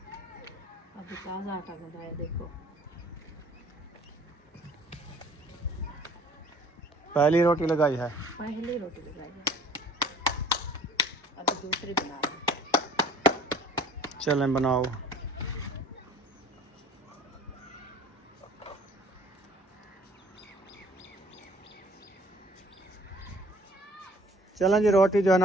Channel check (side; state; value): both; normal; correlation 0.52